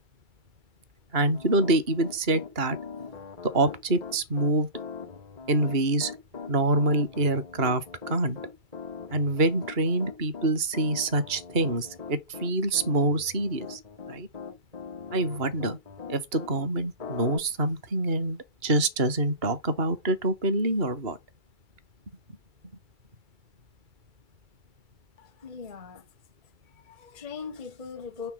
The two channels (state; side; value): late; left; 2.3 ms